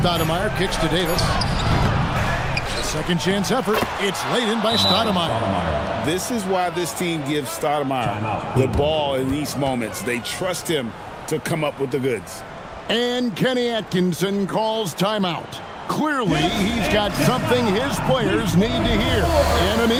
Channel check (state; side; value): identical; both; correlation 1.00